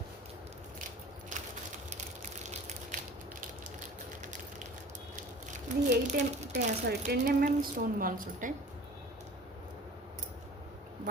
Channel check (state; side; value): normal; both; correlation 0.42